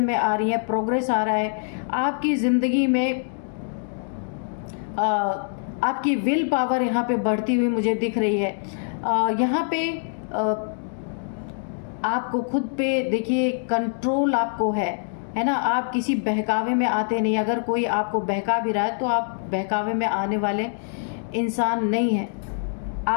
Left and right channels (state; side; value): silent; right; digital silence